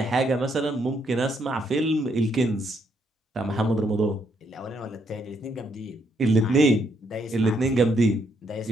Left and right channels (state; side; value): normal; both; correlation 0.74